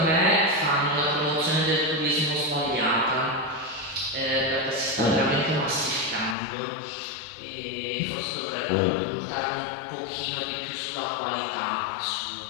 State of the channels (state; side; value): drops out; right; at 6.4 s